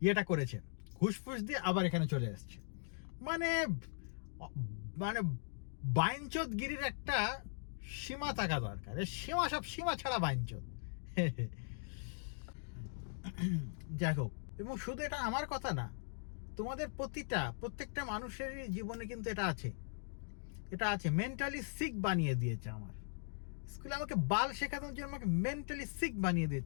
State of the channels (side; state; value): right; silent; digital silence